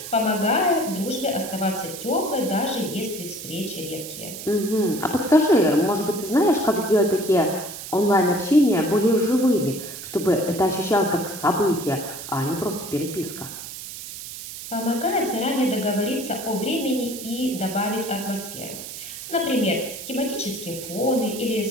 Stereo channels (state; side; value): noise; right; hiss, 10 dB below the sound